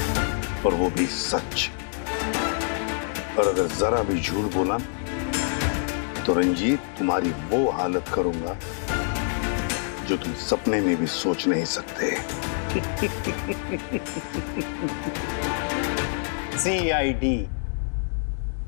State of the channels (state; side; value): silent; right; 61 dB below the other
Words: और वो भी सच। और अगर जरा भी झूठ बोला तो रंजीत तुम्हारी वो हालत करूंगा जो तुम सपने में भी सोच नहीं सकते। CID